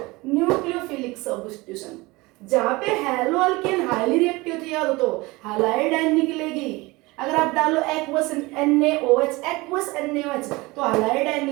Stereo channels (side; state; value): left; quieter; 22.6 dB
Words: nucleophilic substitution। जहाँ पे हैलोएल्केन हाईली रिएक्टिव थी, याद हो तो हैलाइड आयन निकलेगी। अगर आप डालो एक्वस NaOH, एक्वस NaOH, तो हैलाइड आयन